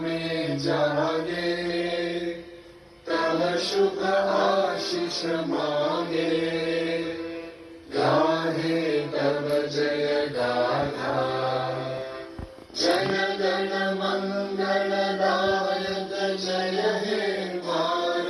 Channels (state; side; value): identical; both; correlation 1.00